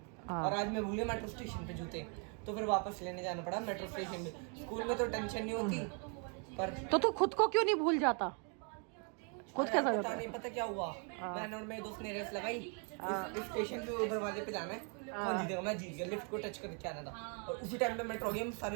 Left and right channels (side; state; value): left; quieter; 38.3 dB